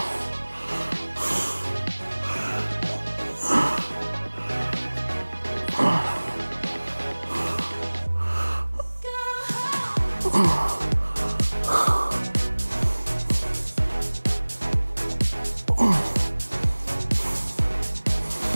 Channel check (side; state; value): both; inverted; correlation -1.00